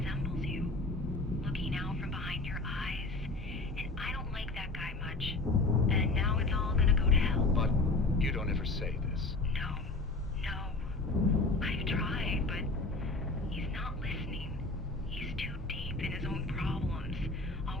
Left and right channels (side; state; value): right; quieter; 3.1 dB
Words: you. Looking out from behind your eyes, and I don't like that guy much. And now it's all gonna go to hell. But you don't ever say this. No. I've tried, but he's not listening. He's too deep in his own problems,